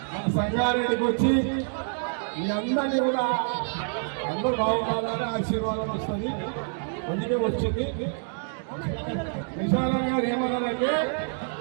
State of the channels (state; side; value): silent; left; digital silence